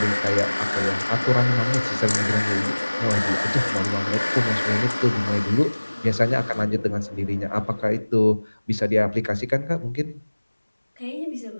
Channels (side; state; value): both; inverted; correlation -1.00